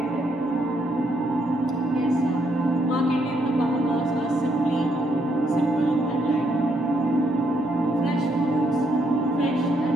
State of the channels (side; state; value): both; normal; correlation 0.74